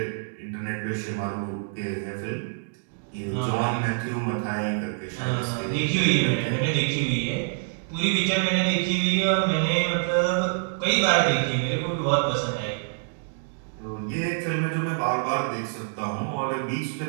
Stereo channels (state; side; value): silent; left; digital silence